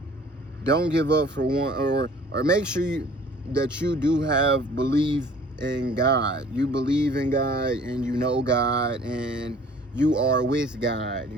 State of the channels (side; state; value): both; normal; correlation 0.51